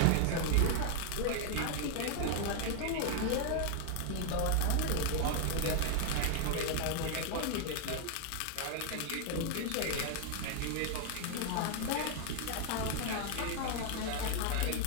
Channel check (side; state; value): both; different; correlation 0.00